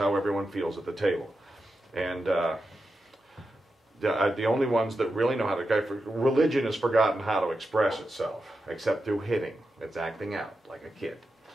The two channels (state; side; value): normal; both; correlation 0.89